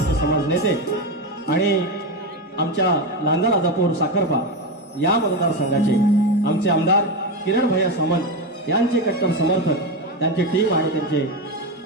समाज नेते आणि आमच्या लांजा राजापूर साखरपा या मतदारसंघाचे आमचे आमदार किरण भैया सामंत यांचे कट्टर समर्थक, त्यांची टीम आणि त्यांचे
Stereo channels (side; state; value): both; normal; correlation 0.14